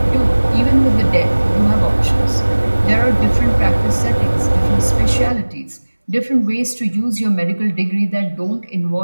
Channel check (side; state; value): both; inverted; correlation -1.00